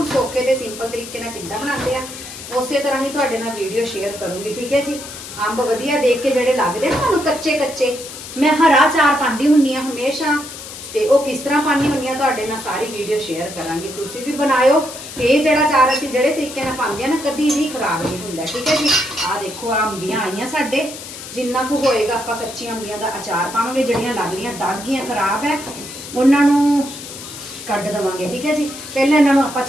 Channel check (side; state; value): left; noise; hiss, 12 dB below the sound